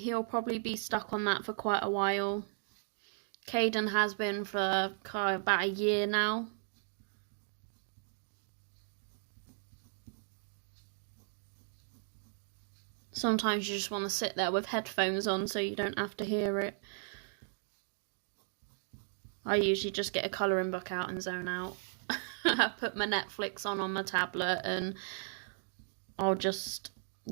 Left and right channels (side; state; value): left; silent; digital silence